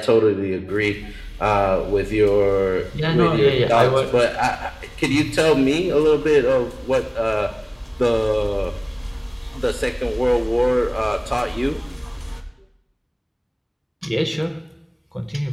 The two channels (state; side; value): identical; both; correlation 1.00